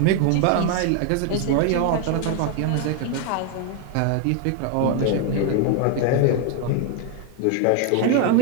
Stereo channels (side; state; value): both; different; correlation 0.00